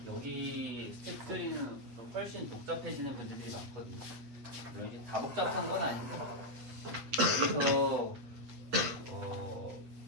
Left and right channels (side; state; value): left; late; 8.3 ms